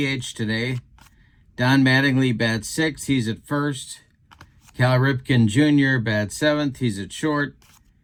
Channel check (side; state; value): both; identical; correlation 1.00